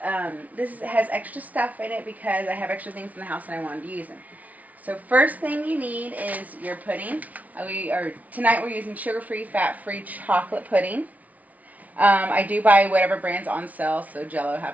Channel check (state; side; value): late; left; 0.072 ms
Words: this has extra stuff in it because I have extra things in the house and I wanted to use them. So first thing you need is your pudding. Tonight we're using sugar-free, fat-free chocolate pudding. I do buy whatever brand's on sale, so Jello